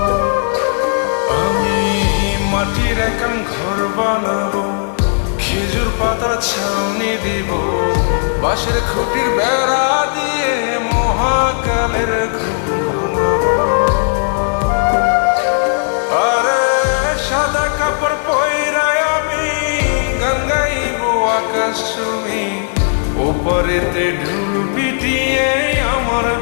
আমি মাটির একান ঘর বানাবো, খেজুর পাতার ছাউনি দিব, বাঁশের খুঁটির বেড়া দিয়ে মহাকালের ঘুম ঘুমাবো। আরে সাদা কাপড় পইরায় আমি গান গাইবো আকাশ ছুঁই, ওপরেতে ঢোল পিটিয়ে আমার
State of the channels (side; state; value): right; silent; digital silence